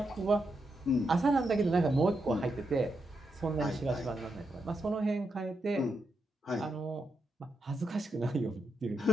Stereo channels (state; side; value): normal; both; correlation 0.84